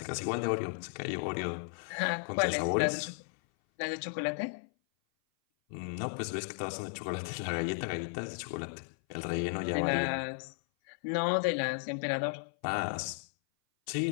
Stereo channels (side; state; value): right; silent; 55 dB below the other